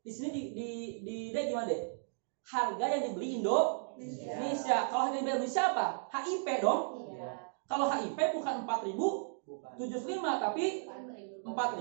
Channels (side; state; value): left; silent; digital silence